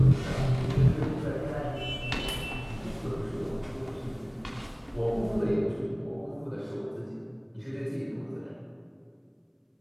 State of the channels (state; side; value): identical; both; correlation 1.00